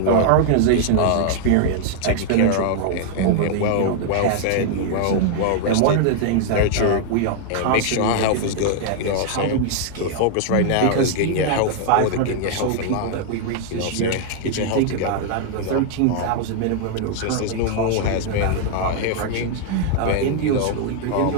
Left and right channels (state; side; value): different; both; correlation 0.00